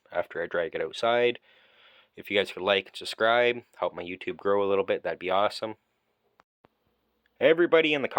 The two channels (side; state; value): both; identical; correlation 1.00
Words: after I drag it outside. If you guys could like and subscribe, help my YouTube grow a little bit, that'd be awesome. Everybody in the